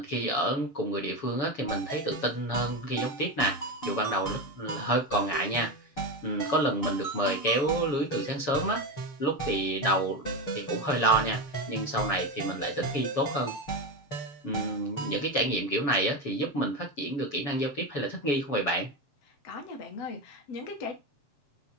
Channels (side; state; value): right; late; 7.1 ms